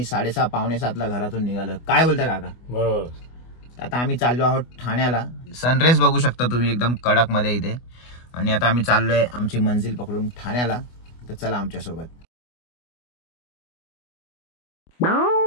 6:30 पावणे 7ला घरातून निघालो. काय बोलता काका? बरोबर. आता आम्ही चाललो आहोत ठाण्याला. सनराईज बघू शकता तुम्ही एकदम कडक मध्ये इथे. आणि आता आम्ही चाललोय आमची मंजिल पकडून ठाण्याला. तर चला आमच्या सोबत.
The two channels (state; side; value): late; right; 24 ms